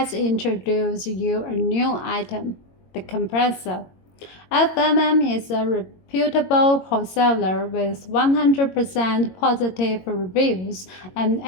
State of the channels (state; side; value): late; right; 22 ms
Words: introduce you a new item, the compressor. FMM is a reputable wholesaler with 100% positive reviews and